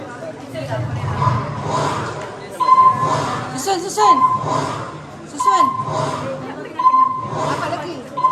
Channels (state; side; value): identical; both; correlation 1.00